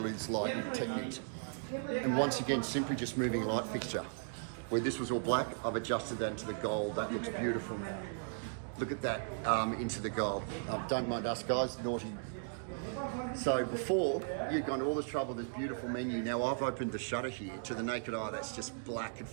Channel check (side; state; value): left; silent; digital silence